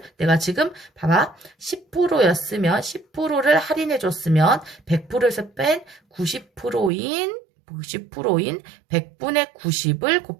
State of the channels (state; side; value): drops out; left; at 6.9 s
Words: 내가 지금 봐봐. 10%였으면 10%를 할인해 줬으면 100%에서 뺀 90%인 90%인 100분의 90을